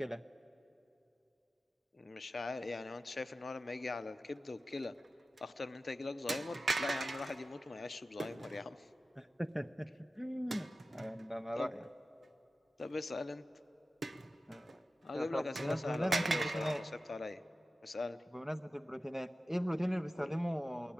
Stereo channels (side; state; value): both; normal; correlation 0.95